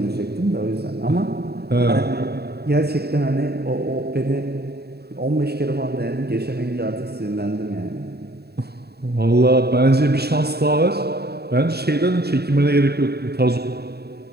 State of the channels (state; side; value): late; left; 0.47 ms